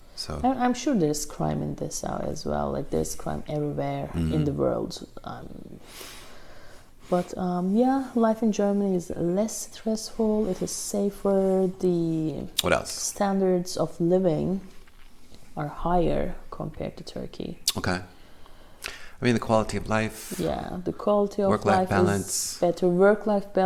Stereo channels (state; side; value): identical; both; correlation 1.00